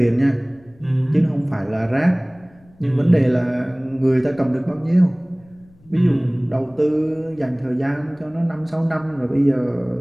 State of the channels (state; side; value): noise; left; rumble, 29 dB below the sound